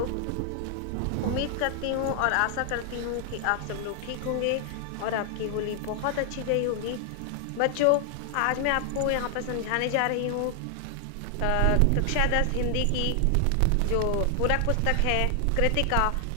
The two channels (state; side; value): different; both; correlation 0.00